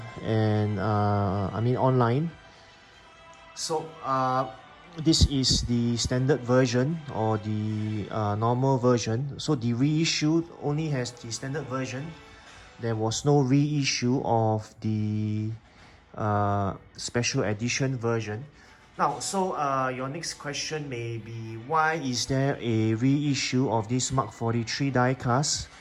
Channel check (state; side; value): identical; both; correlation 1.00